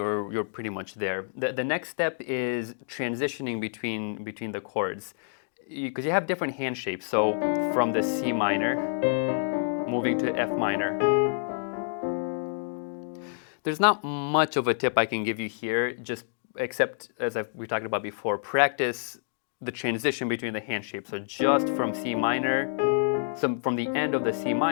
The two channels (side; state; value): right; silent; digital silence